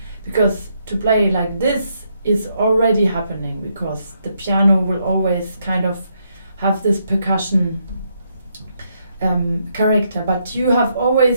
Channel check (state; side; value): inverted; both; correlation -0.76